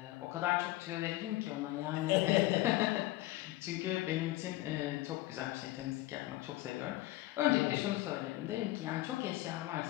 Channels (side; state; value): right; quieter; 17.4 dB